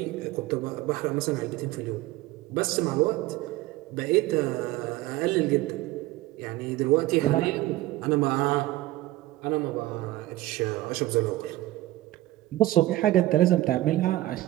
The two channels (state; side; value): quieter; left; 16.6 dB